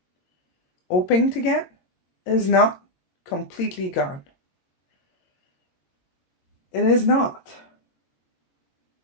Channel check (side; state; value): right; late; 22 ms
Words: hoping to get is not completely gone. It is not.